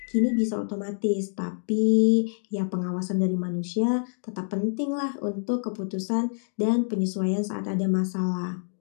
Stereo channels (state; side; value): silent; right; digital silence